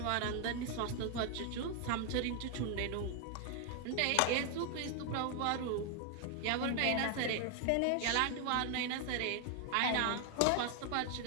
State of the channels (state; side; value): different; both; correlation 0.00